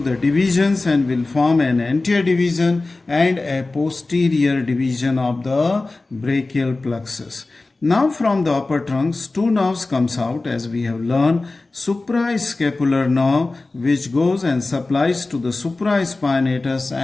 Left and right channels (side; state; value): right; quieter; 3.3 dB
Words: divisions and will form an anterior division and a posterior division of the brachial plexus. Now from the upper trunks, two nerves comes out, as we have learned. Supraescapular nerve, which goes and supplies to the supraspinatus